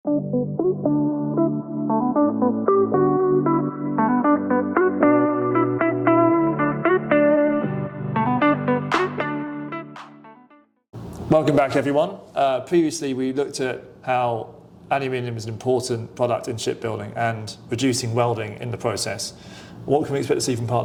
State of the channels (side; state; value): both; identical; correlation 1.00